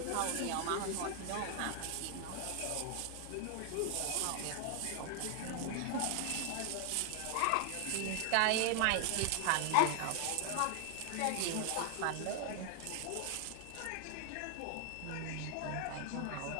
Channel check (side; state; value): both; different; correlation 0.00